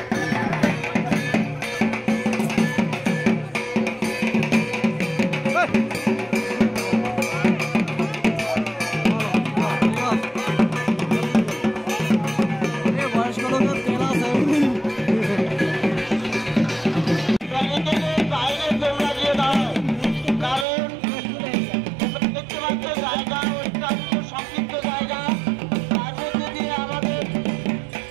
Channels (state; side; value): drops out; left; at 20.7 s